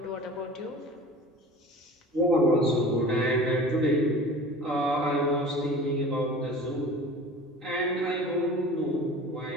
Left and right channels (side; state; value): both; normal; correlation 0.40